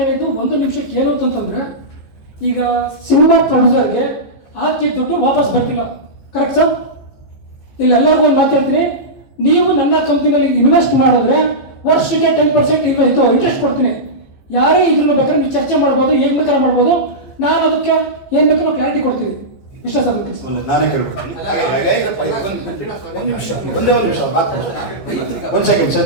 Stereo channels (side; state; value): right; late; 15 ms